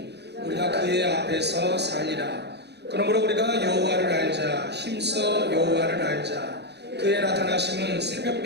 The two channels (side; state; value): left; late; 0.49 ms